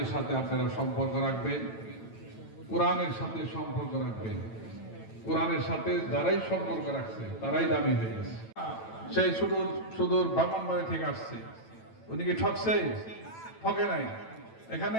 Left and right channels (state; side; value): late; right; 9.1 ms